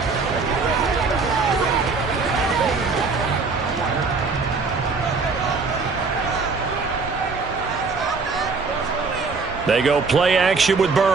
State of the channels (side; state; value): left; quieter; 4.4 dB